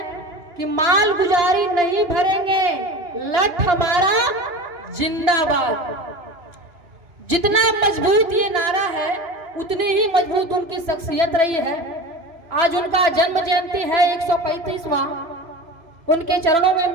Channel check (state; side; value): late; left; 2.9 ms